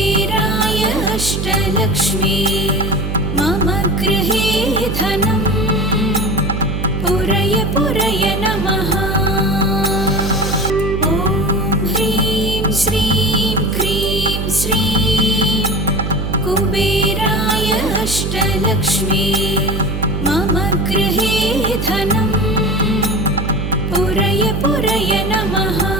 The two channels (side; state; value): right; noise; hum, 3 dB below the sound